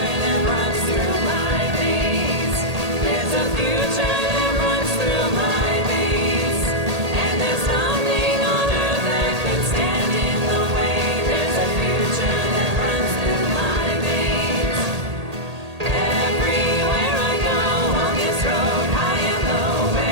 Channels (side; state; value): left; late; 1.8 ms